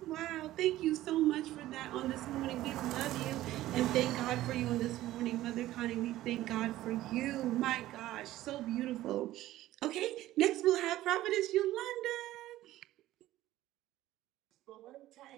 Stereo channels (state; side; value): quieter; left; 15.2 dB